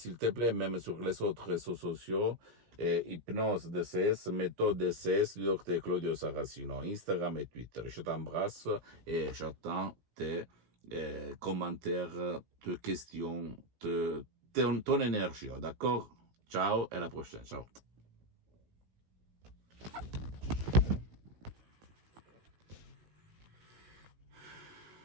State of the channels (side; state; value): left; late; 17 ms